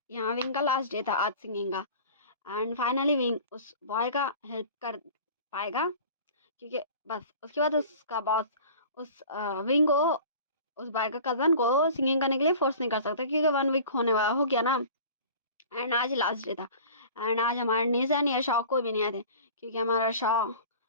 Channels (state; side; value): inverted; both; correlation -0.42